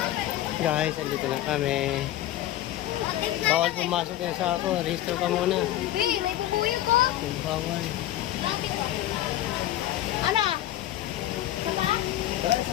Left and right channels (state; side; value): quieter; right; 13.8 dB